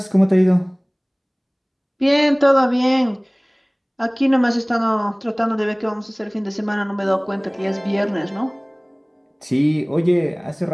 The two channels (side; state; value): both; identical; correlation 1.00